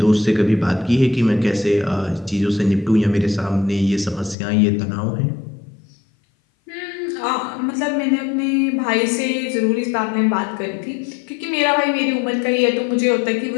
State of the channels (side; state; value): right; drops out; at 4.4 s